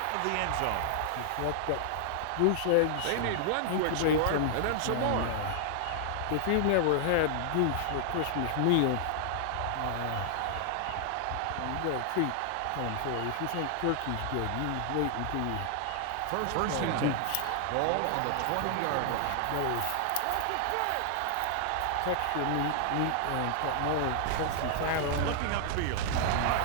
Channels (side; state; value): both; different; correlation 0.00